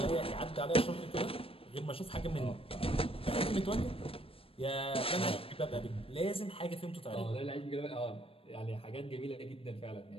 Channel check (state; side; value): late; right; 0.27 ms